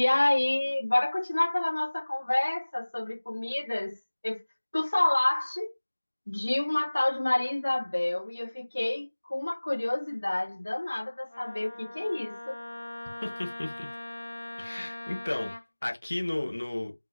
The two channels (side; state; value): both; inverted; correlation -1.00